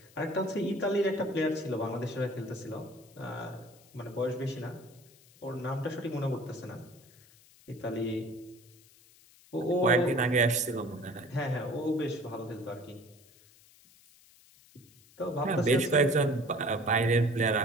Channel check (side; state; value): left; noise; hiss, 26 dB below the sound